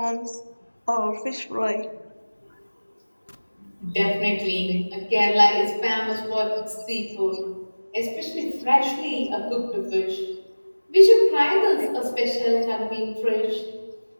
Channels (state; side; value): inverted; both; correlation -1.00